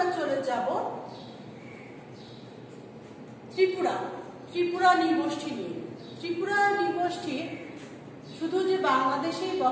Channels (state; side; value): identical; both; correlation 1.00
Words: চলে যাব ত্রিপুরা নৃগোষ্ঠী নিয়ে। ত্রিপুরা নৃগোষ্ঠী শুধু যে বাংলাদেশেই